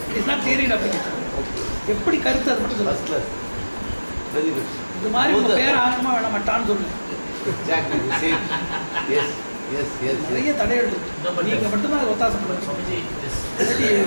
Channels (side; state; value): both; inverted; correlation -1.00